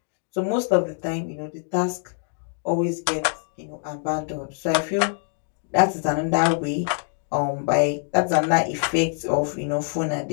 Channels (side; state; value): right; silent; 62 dB below the other